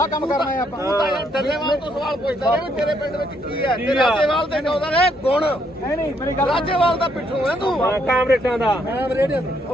ਕਰਨਾ ਹੈ ਆਪਾਂ ਤੂੰ ਤਾਂ ਯਾਰ ਡੱਲੇਵਾਲ ਤੋਂ ਸਵਾਲ ਪੁੱਛਦਾ ਰਿਹਾ ਵੀ ਤੇਰੇ ਪਿੰਡ ਵਿੱਚ ਕੀ ਹੈ ਤੇ ਰਾਜੇਵਾਲ ਦੇ ਕਹਿੰਦਾ ਨੇ ਗੁਣ ਨਹੀਂ ਮੇਰੀ ਗੱਲ ਰਾਜੇਵਾਲ ਦਾ ਪਿੱਠੂ ਹੈ ਤੂੰ ਕਾਮਰੇਟਾਂ ਦਾ ਮੈਂ ਰੇਡੀਓ ਤੇ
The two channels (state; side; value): normal; both; correlation 0.72